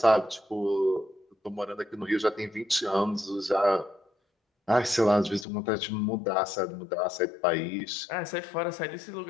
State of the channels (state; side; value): drops out; right; at 5.5 s